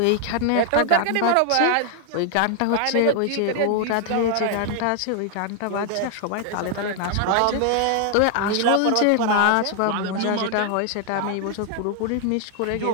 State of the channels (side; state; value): both; different; correlation 0.00